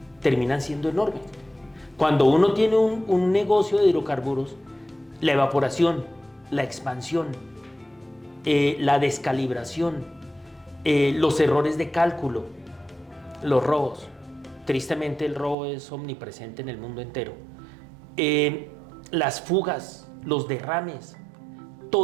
terminan siendo enormes. Cuando uno tiene un negocio de hidrocarburos, la evaporación, la expansión, la descalibración, los errores de cálculo, los robos. Tristemente el robo es omnipresente en el mundo entero. Las fugas, los derrames,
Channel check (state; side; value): drops out; left; at 15.6 s